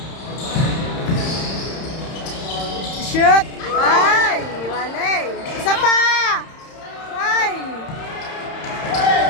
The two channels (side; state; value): right; late; 31 ms